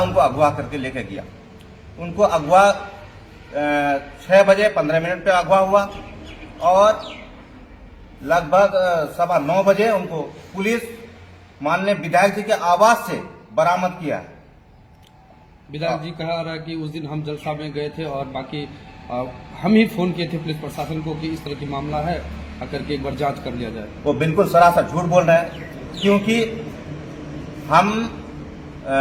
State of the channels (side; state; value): both; identical; correlation 1.00